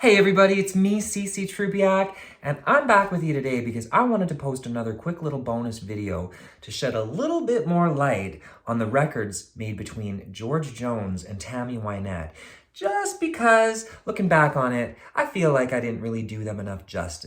Hey everybody, it's me, Trubiak, and I'm back with you today because I wanted to post another quick little bonus video to shed a little bit more light on the records made between George Jones and Tammy Wynette. Just because, looking back on it, I feel like I didn't really do them enough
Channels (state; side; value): identical; both; correlation 1.00